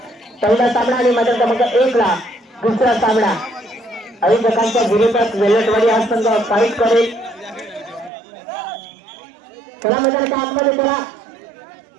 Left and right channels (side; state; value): left; drops out; at 8.1 s